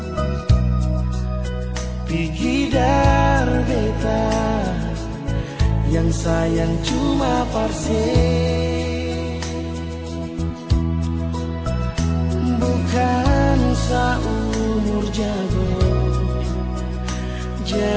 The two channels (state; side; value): identical; both; correlation 1.00